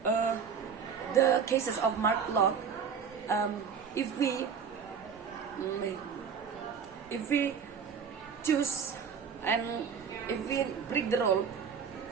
the cases of Mark Locke. If we choose and if we break the rule,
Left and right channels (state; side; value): quieter; left; 6.7 dB